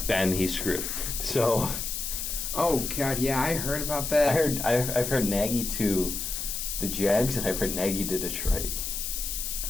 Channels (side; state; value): left; noise; hiss, 4 dB below the sound